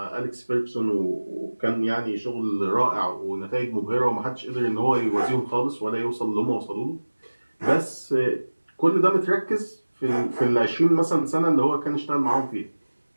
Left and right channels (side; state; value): both; inverted; correlation -1.00